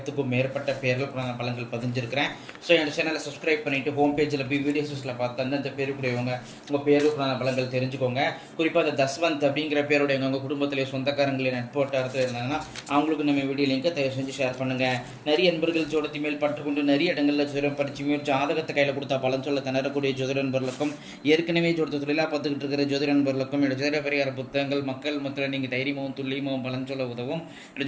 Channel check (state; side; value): identical; both; correlation 1.00